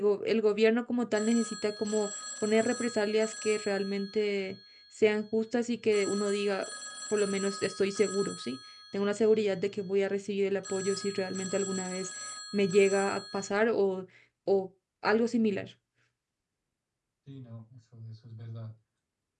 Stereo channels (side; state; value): both; identical; correlation 1.00